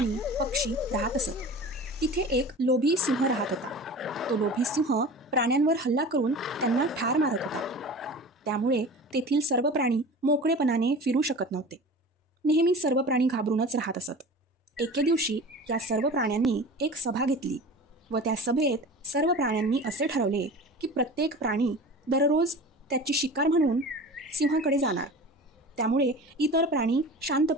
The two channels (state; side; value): normal; both; correlation 0.36